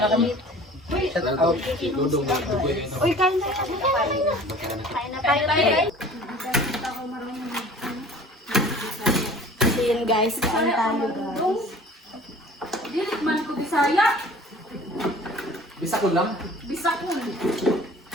kami. Uy, kain na tayo. Kain na tayo. So yun guys, kain tayo guys. Dilit man ko Bisaya. Bisakol lang. Bisakul.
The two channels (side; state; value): both; normal; correlation 0.46